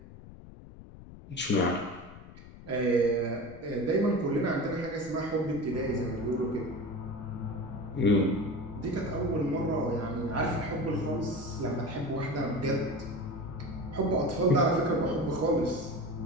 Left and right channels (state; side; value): noise; left; rumble, 17 dB below the sound